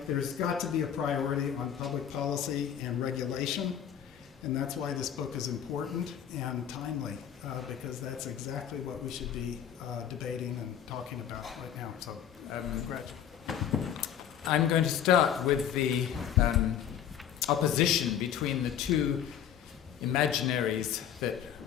there's got to be a priority on public policy and regulation, and that's why this book is important and timely, because that's exactly what we should be debating and talking about right now. So, Greg. I'm going to start with the opposition between the two imaginaries that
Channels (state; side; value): quieter; right; 9.4 dB